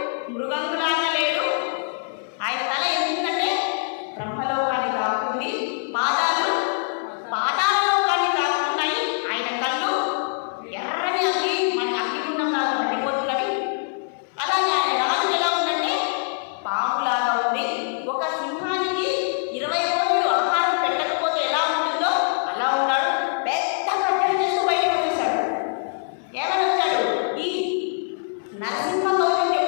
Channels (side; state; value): right; silent; 60 dB below the other